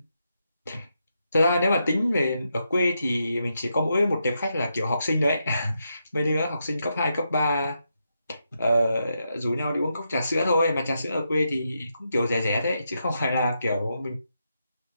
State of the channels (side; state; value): both; inverted; correlation -0.83